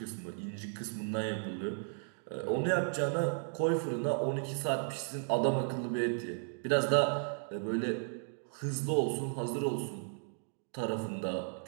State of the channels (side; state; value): left; silent; digital silence